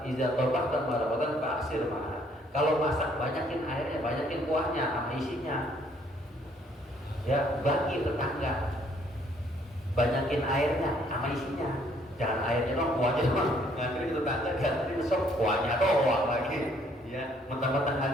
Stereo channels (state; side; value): normal; both; correlation 0.65